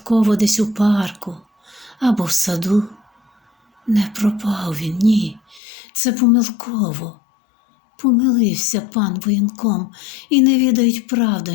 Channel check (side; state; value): right; drops out; at 5.6 s